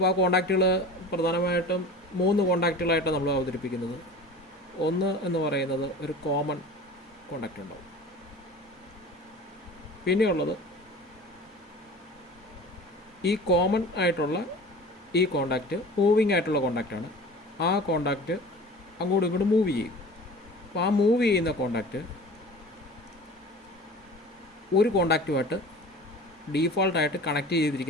ആ കോണ്ടാക്റ്റുകൾ പ്രധാനമായിട്ടും 3 കോണ്ടാക്റ്റുകളായിട്ടാണ് നമ്മൾ അവതരിപ്പിക്കുന്നത്. ഒന്ന് എന്ന് പറയുന്നത് ഒരു കോമൺ കോണ്ടാക്റ്റ് ഉണ്ടാവും. പിന്നെയുള്ളത് ഈ കോമൺ ആയിട്ടുള്ള ഈ കോണ്ടാക്റ്റ് മൂവിങ് ആയിട്ടുള്ള കോണ്ടാക്റ്റാണ്. ആ കോണ്ടാക്റ്റ് അങ്ങോട്ടും ഇങ്ങോട്ടും മൂവ് ചെയ്യും. അപ്പോൾ ആ മൂവ് ചെയ്യുന്ന കോണ്ടാക്റ്റ് ഒരു കോണ്ടാക്റ്റുമായിട്ട് ഡീഫോൾട്ടായിട്ട് കണക്ട്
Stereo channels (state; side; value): normal; both; correlation 0.39